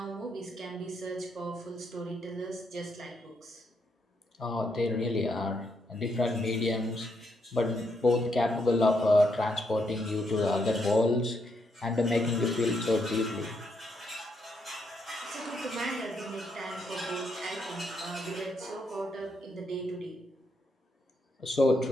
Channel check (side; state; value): both; normal; correlation 0.78